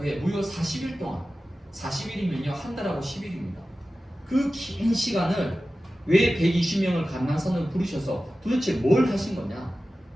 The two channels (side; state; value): both; normal; correlation 0.95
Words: 무려 40일 동안, 40일이면요 한 달하고 10일입니다. 그 긴 시간을 왜 120명을 감람산을 부르셔서 도대체 뭘 하신 거냐?